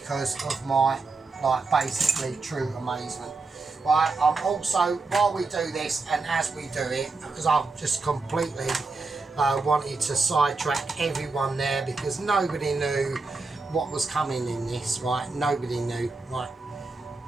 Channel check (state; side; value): quieter; left; 3.9 dB